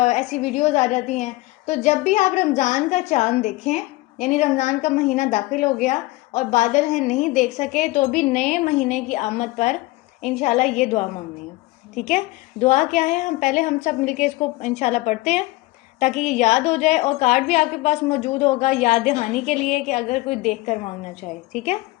ویڈیوز آ جاتی ہیں. تو جب بھی آپ رمضان کا چاند دیکھیں, یعنی رمضان کا مہینہ داخل ہو گیا اور بادل ہیں نہیں دیکھ سکے, تو بھی نئے مہینے کی آمد پر انشاءاللہ یہ دعا مانگنی ہے. ٹھیک ہے. دعا کیا ہے ہم سب مل کے اس کو انشاءاللہ پڑھتے ہیں تاکہ یہ یاد ہو جائے, اور کارڈ بھی آپ کے پاس موجود ہوگا یاد دہانی کے لیے کہ اگر کوئی دیکھ کر مانگنا چاہے. ٹھیک ہے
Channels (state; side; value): quieter; right; 20.4 dB